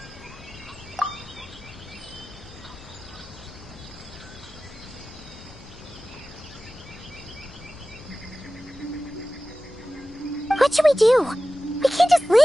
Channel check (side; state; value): left; noise; rumble, 21 dB below the sound